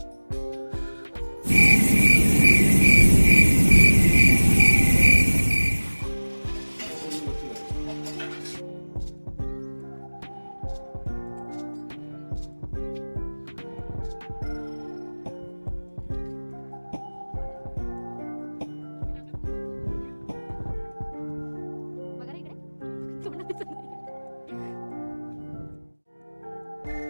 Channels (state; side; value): inverted; both; correlation -1.00